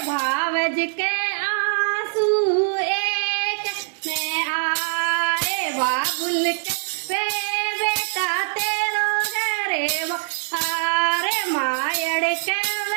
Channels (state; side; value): silent; left; 63 dB below the other